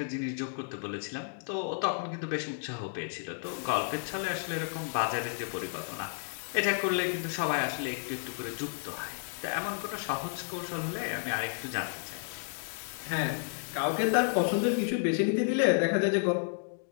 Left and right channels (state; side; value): silent; right; digital silence